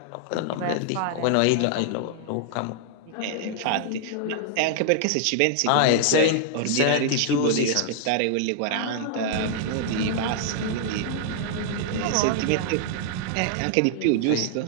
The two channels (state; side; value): different; both; correlation 0.00